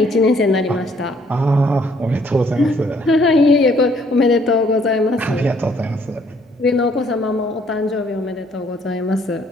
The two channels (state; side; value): normal; both; correlation 0.64